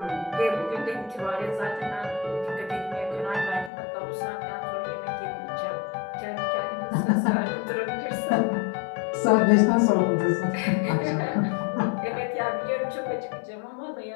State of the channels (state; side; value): drops out; right; at 3.7 s